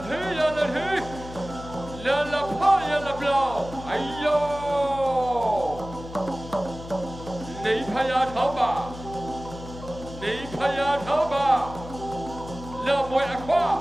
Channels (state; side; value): noise; left; hum, 13 dB below the sound